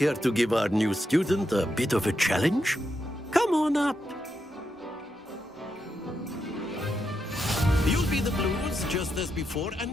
to give our new student a bit of a challenge? Come on up. You'll be the blues, just as before, and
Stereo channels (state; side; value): normal; both; correlation 0.84